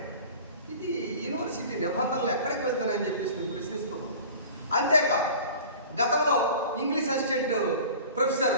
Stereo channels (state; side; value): inverted; both; correlation -0.41